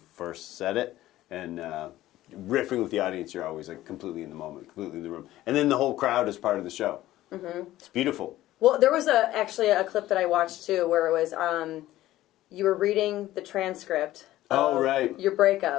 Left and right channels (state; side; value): quieter; right; 15.1 dB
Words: said it. And riffing with the audience, you're always like completely in the moment, completely in the room, and then the whole crowd is part of the show. It's beautiful. Well, there was actually a clip that I watched too, where it was you were reading the transcript. Oh, right. Your